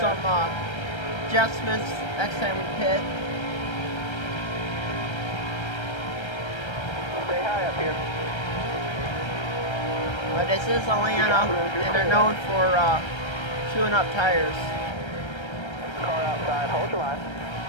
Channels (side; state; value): right; late; 1.3 ms